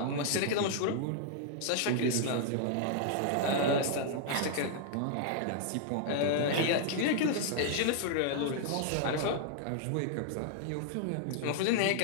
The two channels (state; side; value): different; both; correlation -0.01